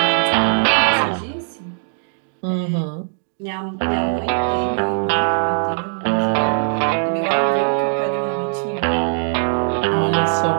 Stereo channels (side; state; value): left; silent; digital silence